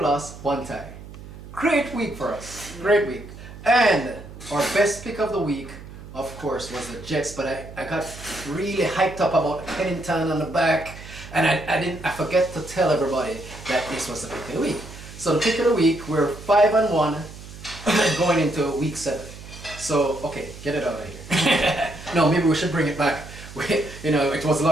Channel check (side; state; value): right; noise; hum, 15 dB below the sound